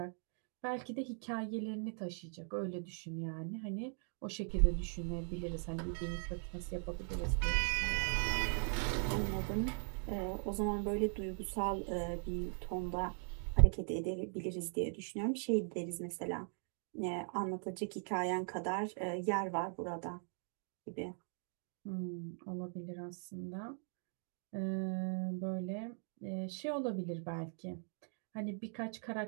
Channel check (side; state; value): left; silent; 51 dB below the other